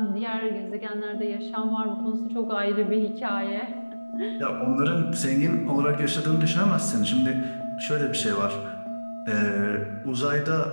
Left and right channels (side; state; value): both; inverted; correlation -1.00